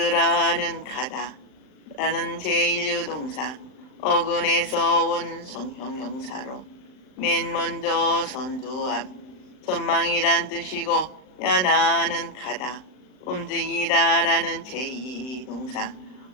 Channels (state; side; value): late; right; 39 ms